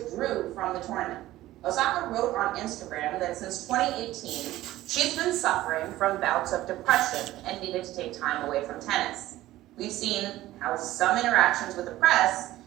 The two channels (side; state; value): left; quieter; 15.7 dB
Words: from the tournament. Osaka wrote on Instagram that since 2018, she's been suffering from bouts of depression and needed to take time away from tennis. We've seen how some interactions with the press